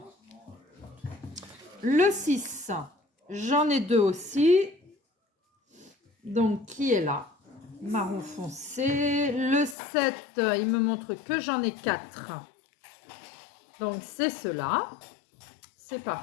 Le 6, j'en ai 2 aussi. Donc, qui est là? Marron foncé. Le 7, il me montre que j'en ai 4. Donc, c'est cela. C'est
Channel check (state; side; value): drops out; right; at 9.8 s